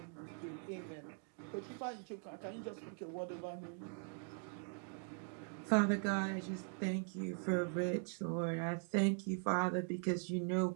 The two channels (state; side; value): silent; left; 50 dB below the other